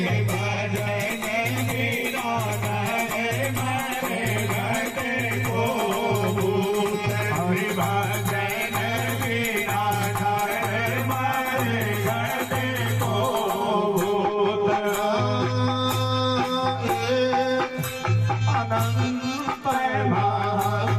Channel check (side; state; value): both; identical; correlation 1.00